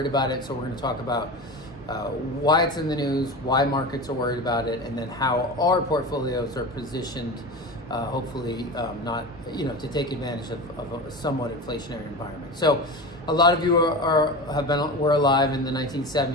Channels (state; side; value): normal; both; correlation 0.28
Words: about it. So we're going to talk about why it's in the news, why markets are worried about it, and then how our portfolios are positioned, hopefully not, to take advantage of a somewhat inflationary environment. So a lot of you were alive in the